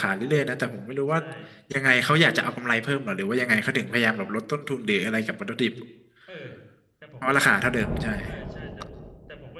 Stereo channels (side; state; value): both; identical; correlation 1.00